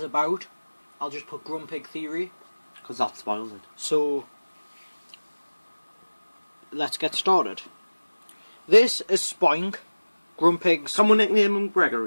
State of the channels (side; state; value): both; inverted; correlation -1.00